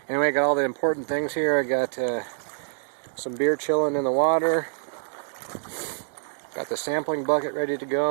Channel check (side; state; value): left; silent; digital silence